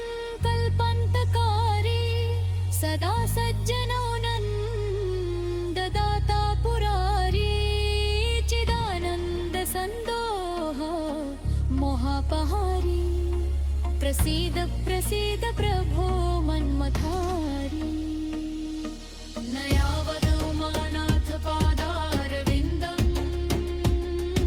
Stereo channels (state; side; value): identical; both; correlation 1.00